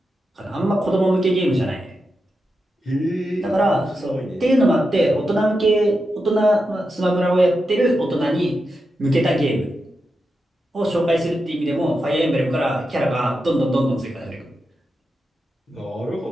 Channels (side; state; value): both; normal; correlation 0.88